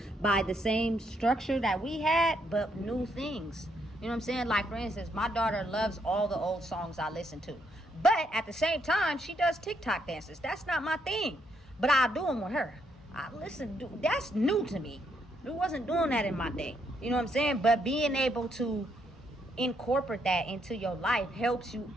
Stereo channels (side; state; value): both; normal; correlation 0.75